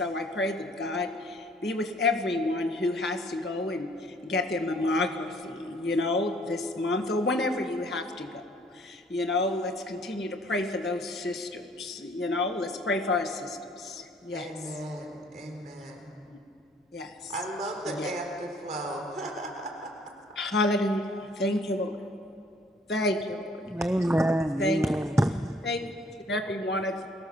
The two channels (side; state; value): both; normal; correlation 0.59